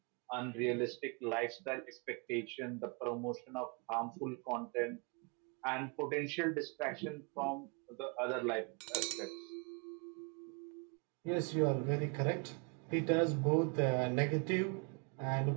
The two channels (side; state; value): left; quieter; 34.0 dB